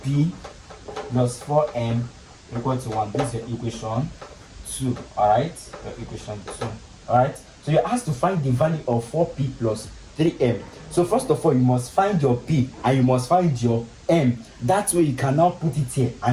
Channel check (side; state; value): both; identical; correlation 1.00